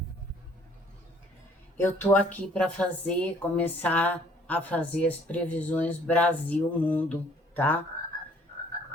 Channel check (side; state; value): both; normal; correlation 0.59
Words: Eu tô aqui para começar a fazer as previsões Brasil-Mundo, tá?